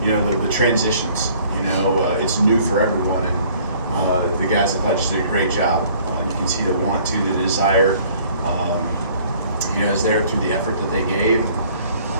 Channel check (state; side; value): inverted; both; correlation -0.56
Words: transitions. It's new for everyone, and the guys I thought just did a great job. You can see the want to, the desire, is there through the effort that they gave.